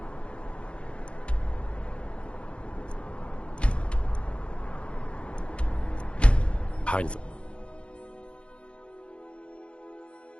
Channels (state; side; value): late; right; 0.059 ms